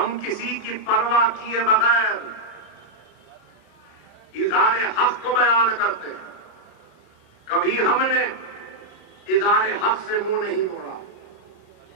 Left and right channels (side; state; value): right; late; 31 ms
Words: کسی کی پرواہ کیے بغیر اظہار حق کو بیان کرتے ہیں، کبھی ہم نے اظہار حق سے منہ نہیں موڑا،